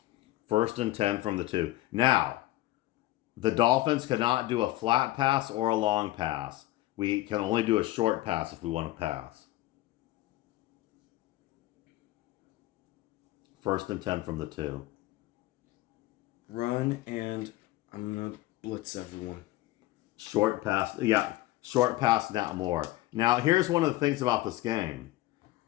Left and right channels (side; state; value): right; quieter; 17.0 dB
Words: 1st and 10 from the 2. Now, the Dolphins cannot do a flat pass or a long pass. We can only do a short pass if we want to pass. 1st and 10 from the 2. Run, and I'm going to blitz everyone. Short pass. Yeah, short pass, not more. Now, here's one of the things about this game.